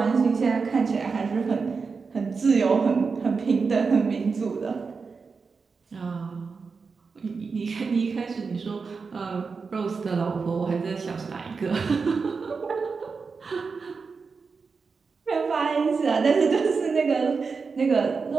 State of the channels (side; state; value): left; quieter; 4.9 dB